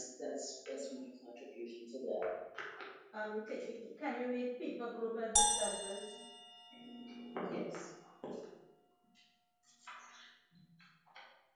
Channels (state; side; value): identical; both; correlation 1.00